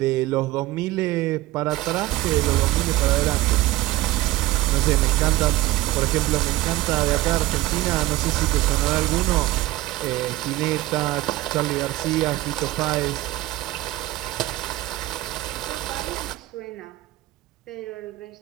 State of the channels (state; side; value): quieter; left; 17.5 dB